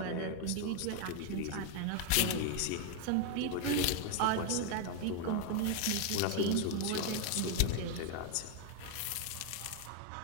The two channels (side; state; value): both; different; correlation 0.00